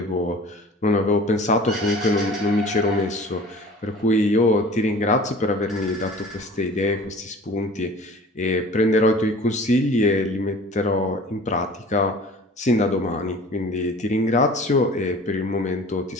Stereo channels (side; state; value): both; normal; correlation 0.44